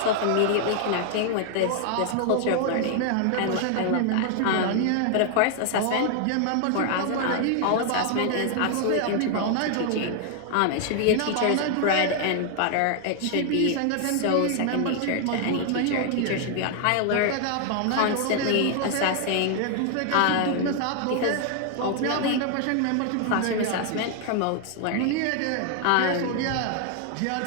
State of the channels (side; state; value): both; different; correlation 0.00